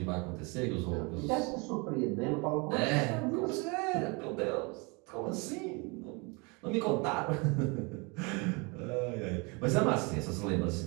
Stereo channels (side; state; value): left; quieter; 29.7 dB